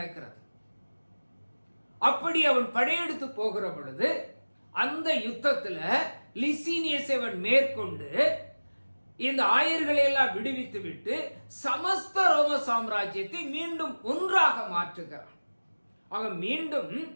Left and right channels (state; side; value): inverted; both; correlation -1.00